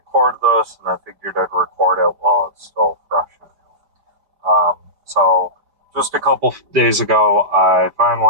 this, and I figured I'd record it while it's still fresh. So, just a couple days ago, I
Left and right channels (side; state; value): left; late; 4.9 ms